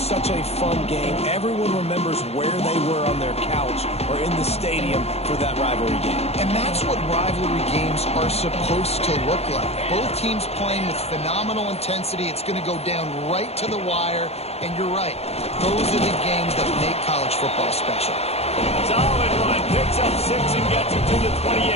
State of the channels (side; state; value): right; late; 0.30 ms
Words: a fun game. Everyone remembers where they were on their couch or in the stadium for that rivalry game. And that's what rivalry games are supposed to look like. Both teams playing with phenomenal intensity. It's going to go down right to the wire. And you're right, those are the games that make college football special. Solid run, picks up 6 and gets it to the 28.